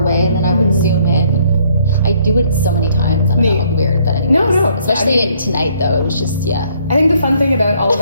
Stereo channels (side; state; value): both; inverted; correlation -0.65